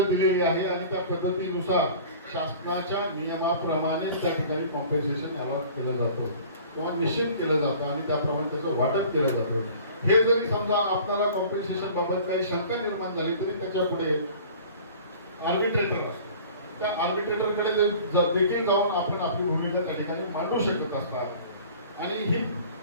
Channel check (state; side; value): inverted; both; correlation -0.45